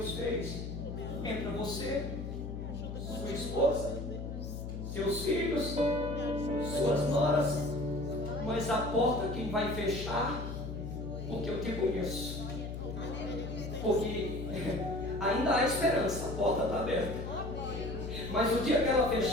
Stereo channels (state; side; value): noise; left; hum, 6 dB below the sound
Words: fez? Entra você, sua esposa, seus filhos, suas noras, mas a porta quem vai fechar? Porque eu te conheço. Porque ainda há esperança, a porta está aberta. Mas o dia que ela